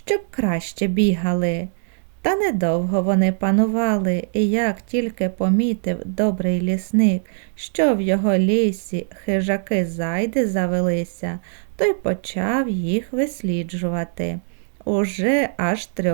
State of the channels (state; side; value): silent; left; digital silence